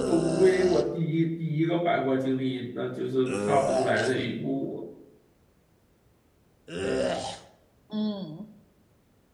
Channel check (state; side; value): identical; both; correlation 1.00